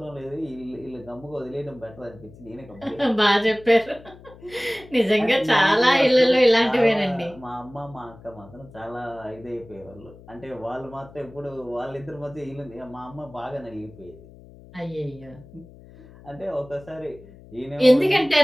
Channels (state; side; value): noise; left; hum, 21 dB below the sound